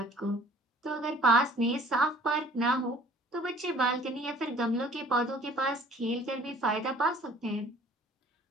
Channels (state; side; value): normal; both; correlation 0.52